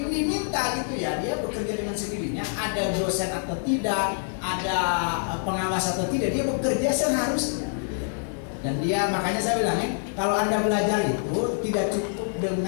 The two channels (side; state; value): right; silent; digital silence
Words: gitu ya, dia bekerja dengan sendirinya, ada dosen atau tidak, ada pengawas atau tidak, dia bekerja seharusnya. Dan dia, makanya saya bilang kalau Anda belajar itu tidak cukup